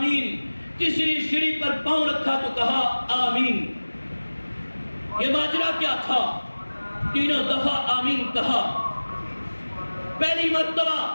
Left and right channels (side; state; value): both; inverted; correlation -1.00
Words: تیسری سیڑھی پر پاؤں رکھا تو کہا آمین۔ یہ ماجرا کیا تھا؟ تینوں دفعہ آمین کہا۔ پہلی مرتبہ